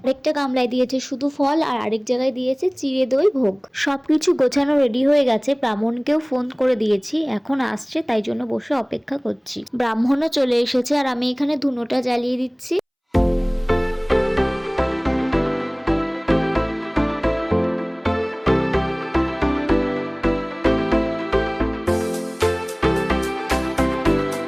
আরেকটা গামলায় দিয়েছে শুধু ফল, আর আরেক জায়গায় দিয়েছে চিড়ে দই ভোগ। সবকিছু গোছানো রেডি হয়ে গেছে। ব্রাহ্মণকেও ফোন করে দিয়েছি, এখন আসছে, তাই জন্য বসে অপেক্ষা করছি। ব্রাহ্মণও চলে এসেছে আর আমি এখানে ধুনোটা জ্বালিয়ে দিচ্ছি।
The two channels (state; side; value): identical; both; correlation 1.00